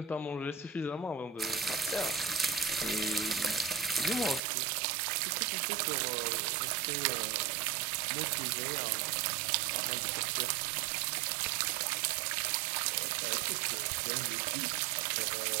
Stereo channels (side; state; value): left; drops out; at 4.4 s